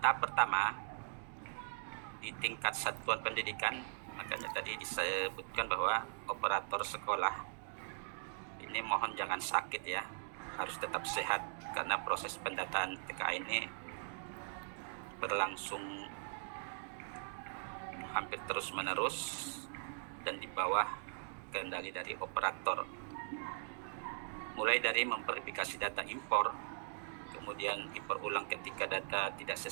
pertama di tingkat satuan pendidikan, makanya tadi disebutkan bahwa operator sekolah ini mohon jangan sakit ya, harus tetap sehat karena proses pendataan TKA ini berlangsung hampir terus-menerus dan di bawah kendali dari operator. Mulai dari memverifikasi data impor, kemudian impor ulang ketika data tidak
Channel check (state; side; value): silent; left; digital silence